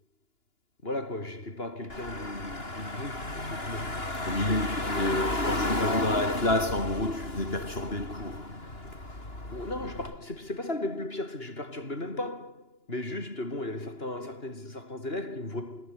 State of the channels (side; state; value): right; late; 2.9 ms